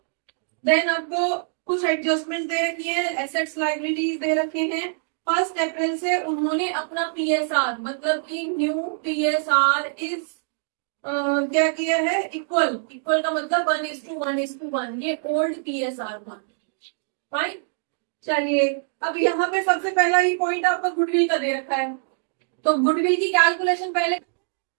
देन आपको कुछ एडजस्टमेंट दे रखी है, एसेट्स लायबिलिटीज दे रखे हैं। 1 अप्रैल से उन्होंने अपना PSR, मतलब कि न्यू PSR इज क्या किया है, इक्वल। इक्वल का मतलब 1:1:1, ये ओल्ड PSR था। राइट। चलिए, अब यहाँ पे सबसे पहला ही पॉइंट आपका गुडविल का दे रखा है, तो गुडविल की कैलकुलेशन पहले,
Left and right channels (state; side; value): silent; left; digital silence